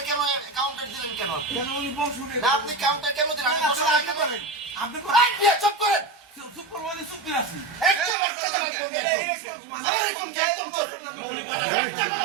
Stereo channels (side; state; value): left; drops out; at 8.2 s